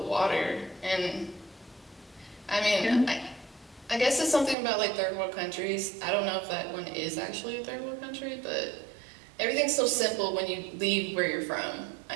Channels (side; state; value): left; drops out; at 4.5 s